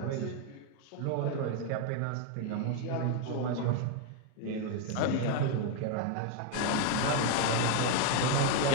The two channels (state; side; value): different; both; correlation 0.01